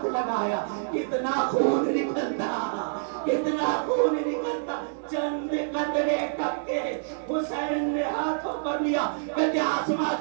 لگایا، اتنا خون نکلتا، اتنا خون نکلتا، چند قطرے ٹپکے، حسین نے ہاتھوں پر لیا، کہتے آسمان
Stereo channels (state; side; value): silent; left; digital silence